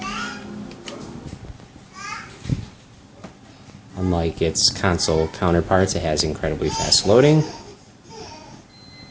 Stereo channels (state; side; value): identical; both; correlation 1.00